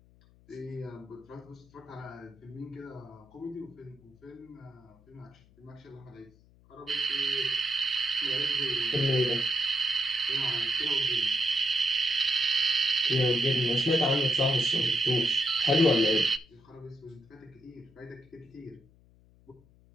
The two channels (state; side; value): noise; left; hum, 28 dB below the sound